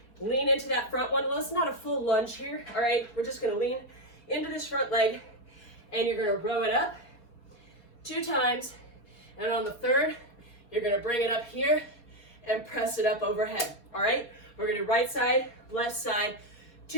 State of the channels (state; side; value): late; right; 4.2 ms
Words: Lean into that front one. Well, it's not a full lunge here, all right? We're just going to lean into this front leg, and you're going to row it up 2 times. And on the third, you're going to bring it up here and press it up overhead, all right? We're going to do right side, left side,